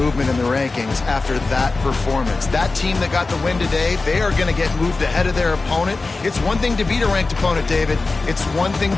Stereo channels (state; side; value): quieter; right; 3.6 dB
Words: in the rankings after that performance. That team that got the win today, they are going to get moved ahead of their opponent. It's one thing to beat a ranked opponent, David. It's one thing